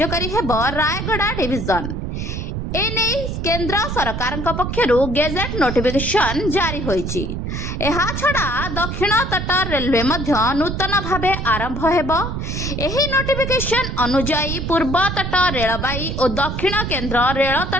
हेब। रायगड़ा डिविजन एने केंद्र सरकार पक्षरु गेजेट नोटिफिकेशन जारी होईची। एहा छड़ा दक्षिण तट रेलवे मध्य नूतन भावे आरंभ हेबो। एही नोटिफिकेशन अनुजाई पूर्व तट रेलबाई और दक्षिण केंद्र रेल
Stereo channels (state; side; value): noise; right; rumble, 4 dB below the sound